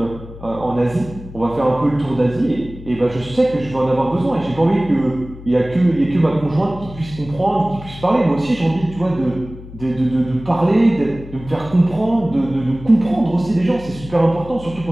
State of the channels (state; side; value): noise; left; hum, 15 dB below the sound